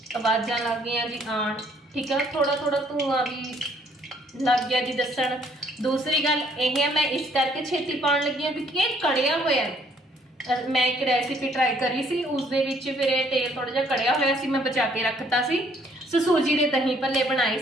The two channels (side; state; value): both; normal; correlation 0.64